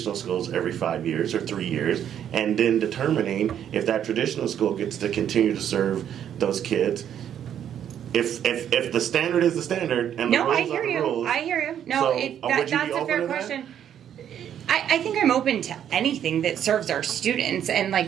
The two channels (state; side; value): quieter; left; 9.7 dB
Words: schools every 5 years or 3 years, and then determining if that traditional school gets to continue to serve those kids? If the standard is the standard and the No, rules I hear are the you. rules. I hear you. No, So, would you be that's a open fair to that? question. I think I'm open to anything that serves our students, and